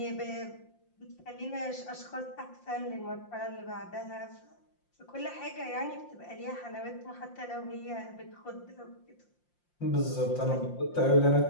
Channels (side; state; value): right; late; 5.7 ms